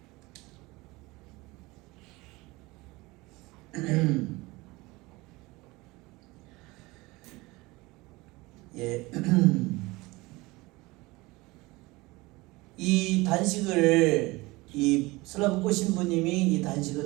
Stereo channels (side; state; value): left; quieter; 22.2 dB